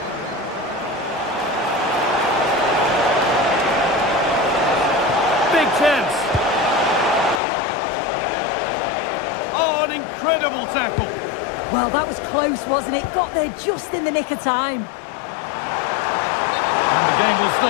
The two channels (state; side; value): drops out; right; at 7.4 s